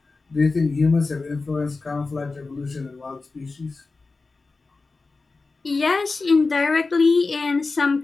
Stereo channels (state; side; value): quieter; right; 3.9 dB